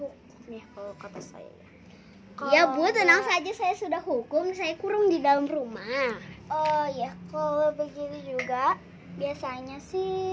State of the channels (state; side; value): identical; both; correlation 1.00